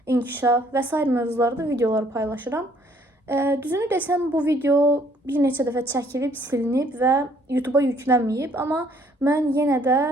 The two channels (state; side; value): normal; both; correlation 0.62